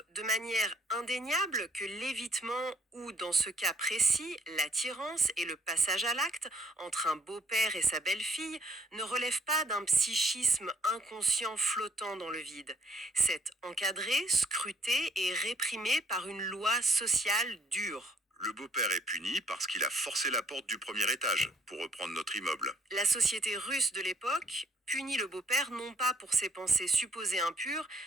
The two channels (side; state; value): both; normal; correlation 0.65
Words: de manière indéniable que l'évitement ou, dans ce cas précis, l'attirance et le passage à l'acte entre un beau-père et sa belle-fille ne relèvent pas d'un psychisme inconscient flottant dans le vide. C'est encadré, scruté et réprimé par une loi sociale dure. Le beau-père est puni parce qu'il a forcé la porte du premier étage, pour reprendre notre immeuble. La société russe de l'époque punit le beau-père non pas pour ses pensées supposées impures,